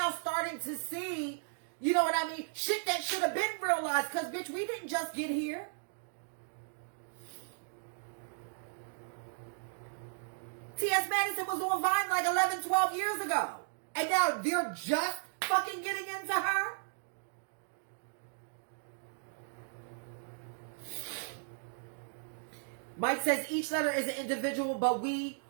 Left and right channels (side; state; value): left; silent; digital silence